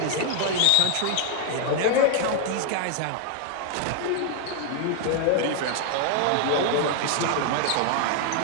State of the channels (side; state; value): both; different; correlation 0.00